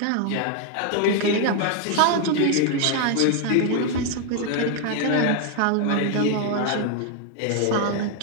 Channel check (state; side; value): different; both; correlation 0.00